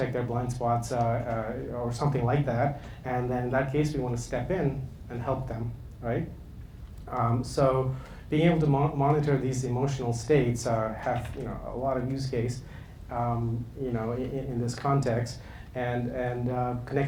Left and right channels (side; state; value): both; identical; correlation 1.00